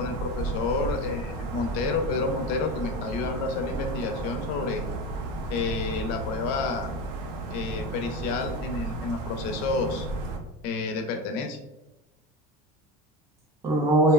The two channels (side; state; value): both; normal; correlation 0.24